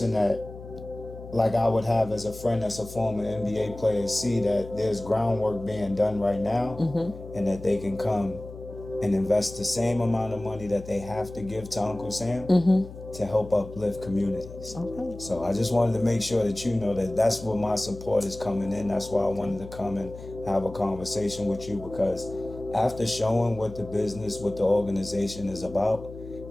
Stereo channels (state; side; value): noise; left; hum, 14 dB below the sound